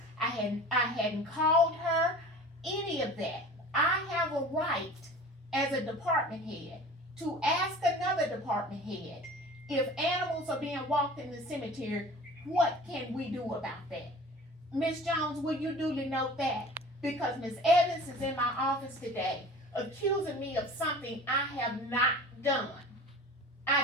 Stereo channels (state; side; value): normal; both; correlation 0.41